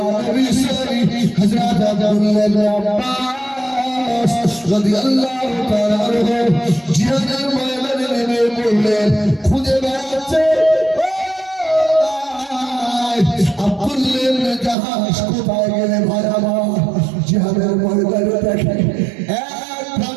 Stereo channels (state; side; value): drops out; left; at 14.8 s